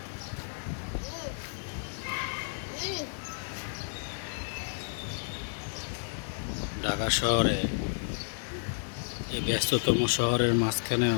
ঢাকা শহরে, এই ব্যস্ততম শহরের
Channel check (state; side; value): silent; right; digital silence